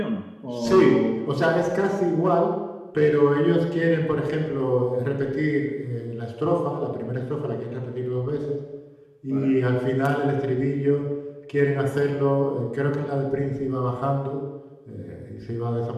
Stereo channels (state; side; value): identical; both; correlation 1.00